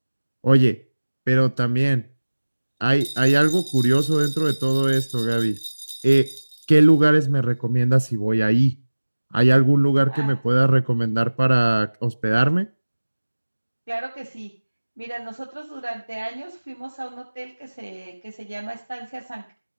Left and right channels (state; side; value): inverted; both; correlation -1.00